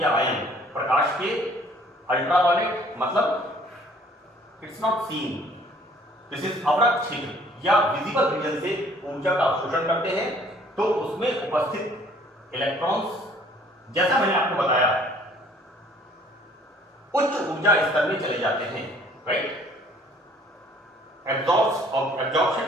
या आयन प्रकाश के अल्ट्रावायलेट मतलब it's not seen, this is अवरक्त छिद्र या विजिबल रीजन से ऊर्जा का अवशोषण करते हैं, तो उसमें उपस्थित इलेक्ट्रॉन्स, जैसा मैंने आपको बताया, उच्च ऊर्जा स्तर में चले जाते हैं, राइट।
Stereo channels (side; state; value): both; normal; correlation 0.57